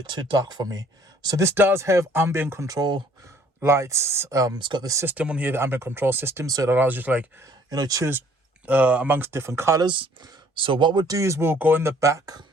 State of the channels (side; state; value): both; normal; correlation 0.59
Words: too dark for me. So this does have ambient control lights. It's got the system on here, the ambient control system, so it allows you to, like, you know, choose amongst different colors. So what we'll do is we'll go in the back,